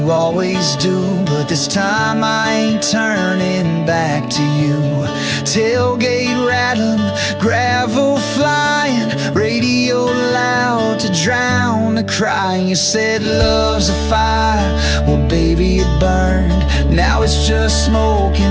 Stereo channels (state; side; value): identical; both; correlation 1.00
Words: always do, but this time I ain't turning back to you. Tailgate rattling, gravel flying, radio loud to drown the crying. You said love's a fire, well baby it burned. Now it's just smoke